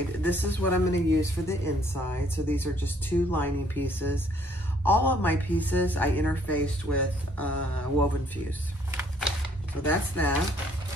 This is what I'm gonna use for the inside. So these are just 2 lining pieces. All of my pieces I interfaced with woven fuse. So that's that.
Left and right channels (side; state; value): both; normal; correlation 0.64